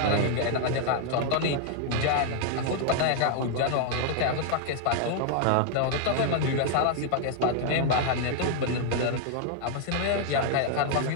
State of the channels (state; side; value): different; both; correlation 0.00